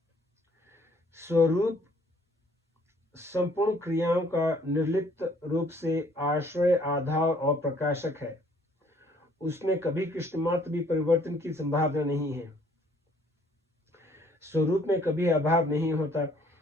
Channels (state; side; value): normal; both; correlation 0.61